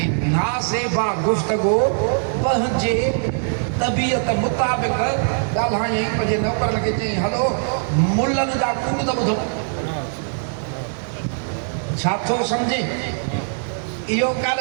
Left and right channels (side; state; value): left; silent; digital silence